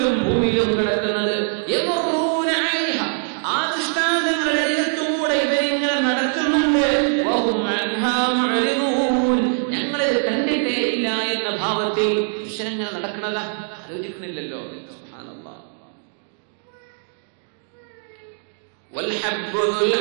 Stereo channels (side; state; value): left; silent; 56 dB below the other